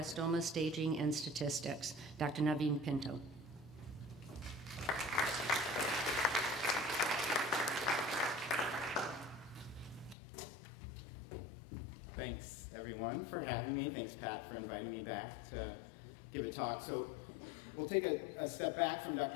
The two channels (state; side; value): drops out; right; at 10.2 s